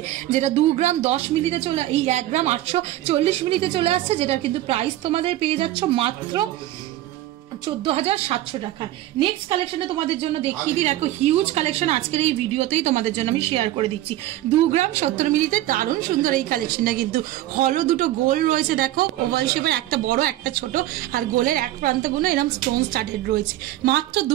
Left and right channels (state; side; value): quieter; left; 14.7 dB